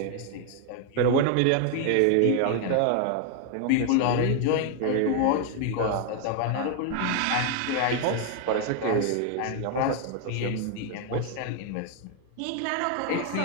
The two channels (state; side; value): different; both; correlation 0.01